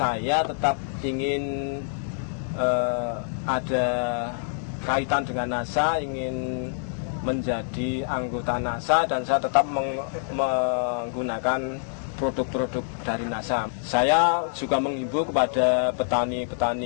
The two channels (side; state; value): right; silent; digital silence